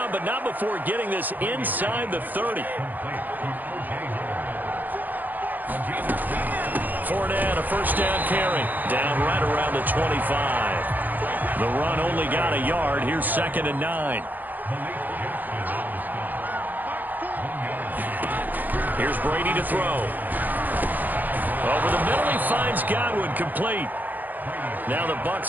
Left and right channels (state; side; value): late; left; 0.084 ms